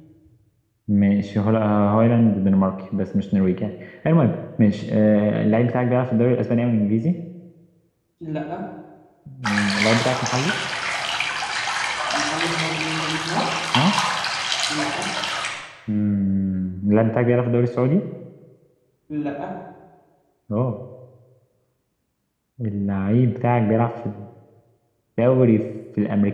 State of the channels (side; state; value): both; identical; correlation 1.00